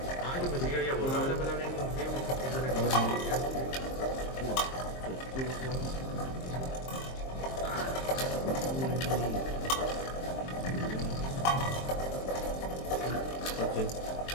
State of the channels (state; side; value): late; right; 23 ms